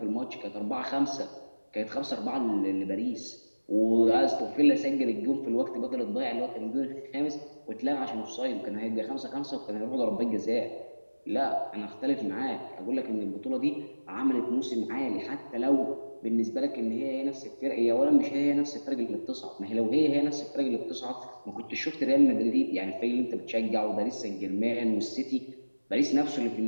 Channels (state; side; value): inverted; both; correlation -1.00